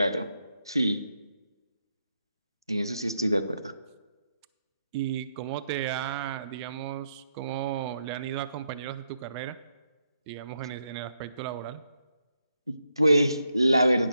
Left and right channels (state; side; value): inverted; both; correlation -0.79